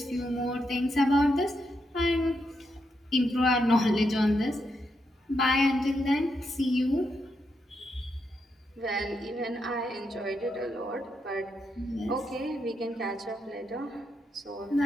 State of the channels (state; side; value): normal; both; correlation 0.82